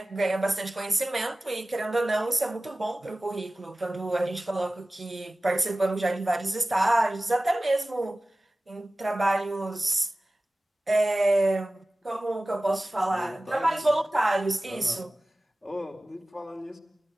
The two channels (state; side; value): normal; both; correlation 0.97